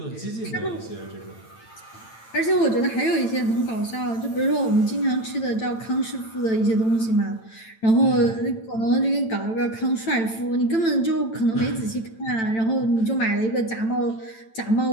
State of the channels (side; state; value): right; late; 9.0 ms